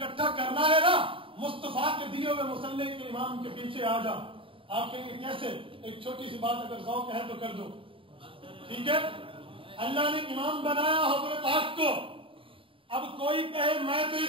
کرنا ہے نا، مصطفیٰ کے دیے ہوئے مصلح کے امام کے پیچھے آ جا۔ آپ کہیں گے کیسے؟ ایک چھوٹی سی بات اگر ذوق ہے تو کر دو، ٹھیک ہے؟ اللہ نے امام بنایا حضور پاک کو، اب کوئی کہے میں تو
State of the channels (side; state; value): left; late; 0.25 ms